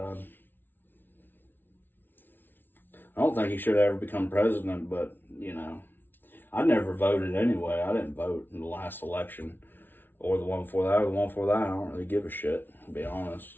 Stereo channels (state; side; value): late; right; 0.096 ms